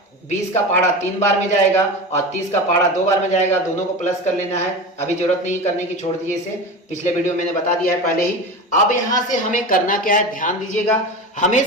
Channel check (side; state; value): both; normal; correlation 0.27